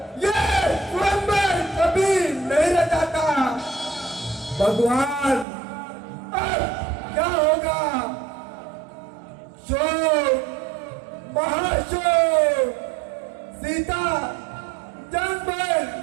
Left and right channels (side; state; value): left; drops out; at 5.5 s